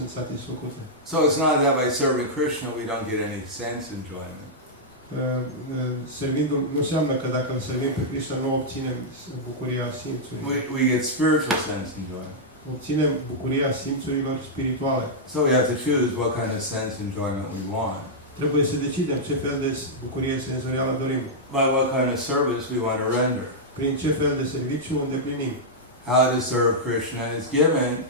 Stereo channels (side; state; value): both; normal; correlation -0.08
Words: satisfăcute. So it's not that by serving Krishna we don't get any sense enjoyment. Servindu-l nu înseamnă că dacă îl servim pe Krishna nu obținem bucuria simțurilor. We get spiritual sense enjoyment. Obținem bucuria simțurilor spirituale. So we have to choose what kind of sense enjoyment we want. Trebuie să decidem ce fel de bucurie senzorială dorim. By what kind of service we want to render. Prin ce fel de serviciu îndeplinim. How to serve Krishna is given